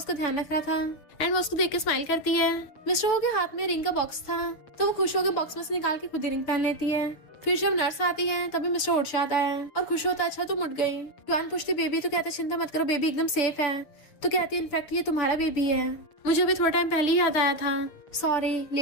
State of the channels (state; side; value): late; right; 6.8 ms